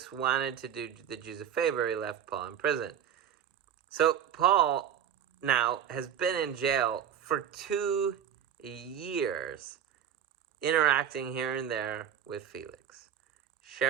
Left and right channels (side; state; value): left; quieter; 9.3 dB